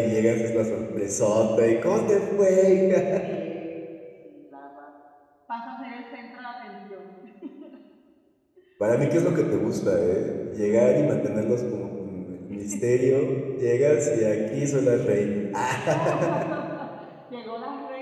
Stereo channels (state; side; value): identical; both; correlation 1.00